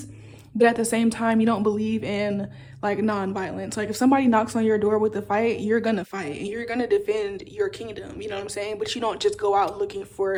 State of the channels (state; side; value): identical; both; correlation 1.00